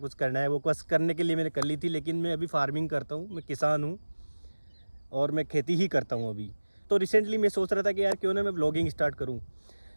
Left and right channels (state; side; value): inverted; both; correlation -1.00